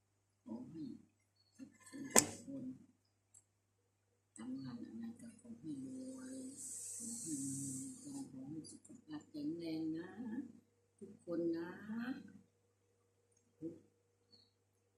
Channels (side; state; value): both; identical; correlation 1.00